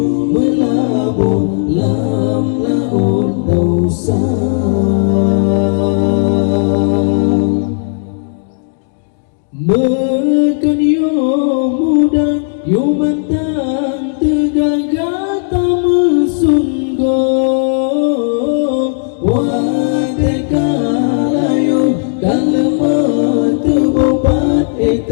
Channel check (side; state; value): right; silent; digital silence